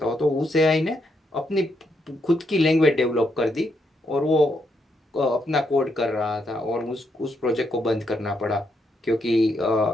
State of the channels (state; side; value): normal; both; correlation 0.78